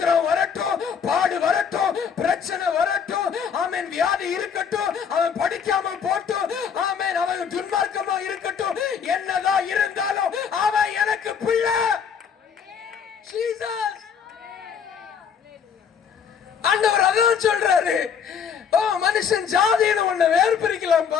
வரட்டும், பாடு வரட்டும், பிரச்சனை வரட்டும், ஆமென், வியாதி இருக்கட்டும், அவன் படிக்காம போட்டும், ஆமென், அவன் துன்மார்க்கமா இருக்கட்டும், என்னதான் இருந்தாலும் அவன் எனக்கு பிள்ளை. ஜீசஸ். ஆண்டவர் அதான் சொல்றாரு. மனுஷன் ஜாதின்னு ஒண்ணு வேறு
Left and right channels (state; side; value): quieter; right; 7.0 dB